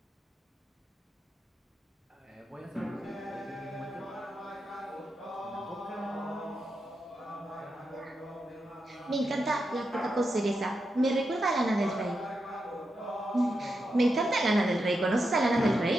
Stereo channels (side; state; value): both; normal; correlation 0.86